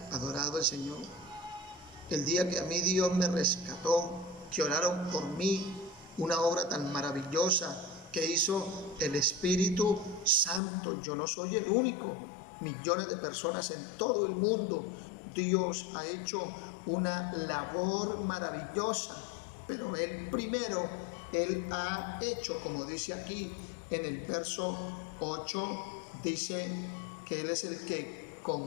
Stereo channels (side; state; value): right; drops out; at 10.6 s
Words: adorado el Señor. El día que a mí Dios me rescató, que oraron por mí, una obra tan maravillosa que hizo el Espíritu Santo. Yo no soy el único, millones de personas en todo el mundo. Dios ha hecho una labor maravillosa, pero Él primero, Él ha hecho, como dice aquí en el verso 8, dice que Él es el que